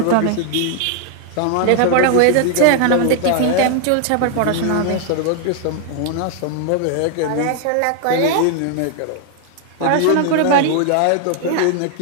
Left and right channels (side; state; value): both; different; correlation 0.00